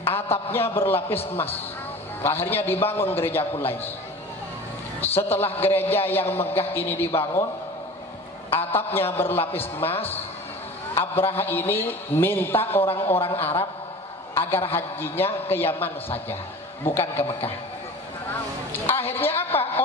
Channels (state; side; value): normal; both; correlation 0.38